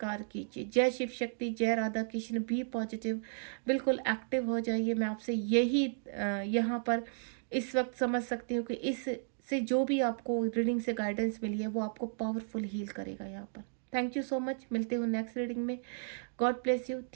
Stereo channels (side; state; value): left; silent; digital silence